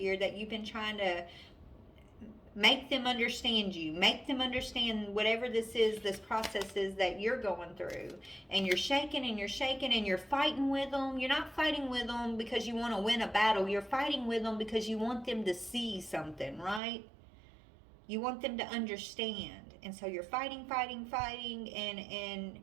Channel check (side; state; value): left; drops out; at 16.8 s